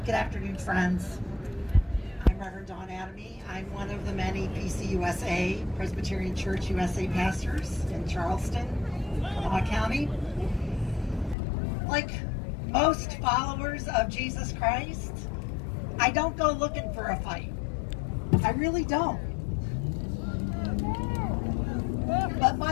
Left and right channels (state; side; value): drops out; right; at 11.4 s